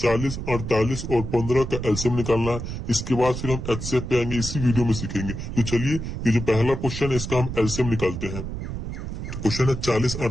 48 और 15 का एलसीएम निकालना है। इसके बाद फिर हम एचसीएफ पे आएंगे, इसी वीडियो में सीखेंगे। तो चलिए, ये जो पहला क्वेश्चन है इसका हम एलसीएम निकालते हैं। तो क्वेश्चन है 40,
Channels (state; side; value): noise; right; rumble, 6 dB below the sound